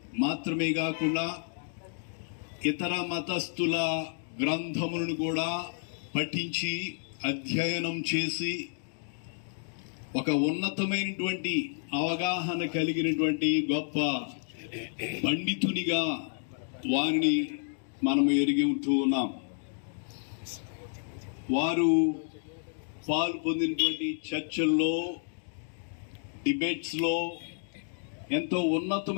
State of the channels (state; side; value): silent; right; 57 dB below the other